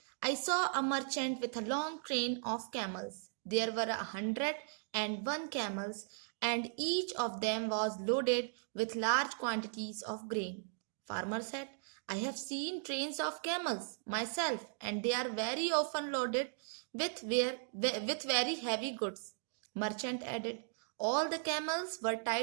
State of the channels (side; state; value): left; silent; digital silence